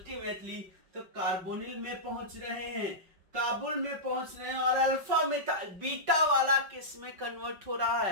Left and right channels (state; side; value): late; left; 5.3 ms